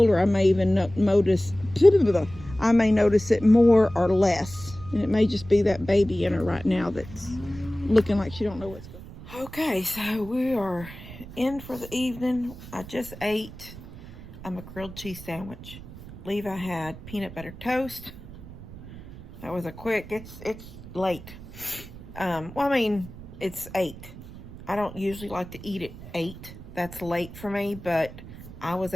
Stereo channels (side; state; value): right; noise; rumble, 15 dB below the sound